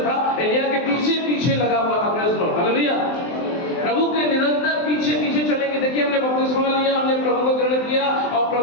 था, एलिया के पीछे पीछे लगा हुआ था। Praise the lord, hallelujah. प्रभु के निरंतर पीछे पीछे चलेंगे। देखिए, हमने बपतिस्मा लिया, हमने प्रभु को ग्रहण किया, और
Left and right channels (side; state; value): right; late; 23 ms